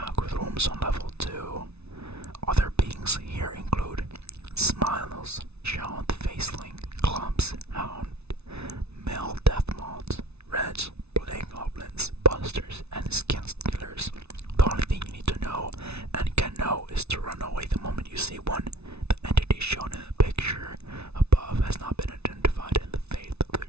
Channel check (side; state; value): left; late; 0.80 ms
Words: on level 2. Other beings here include smiles, shown faceling, clubs, hound, male death moths, reds, plague goblins, busters, and skin stealers. The only thing you need to know and can know is to run away the moment you see one. The entity shown in the picture above has not been identified, and the fate of the